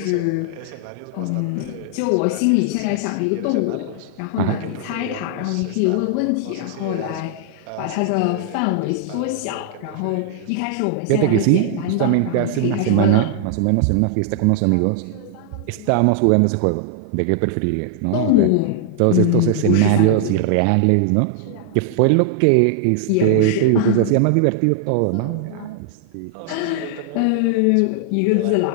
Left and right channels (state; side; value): different; both; correlation 0.00